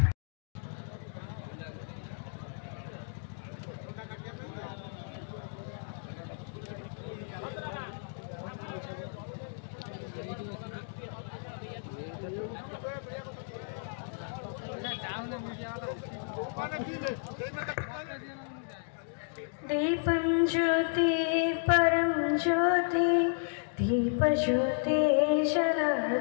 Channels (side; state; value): right; silent; 56 dB below the other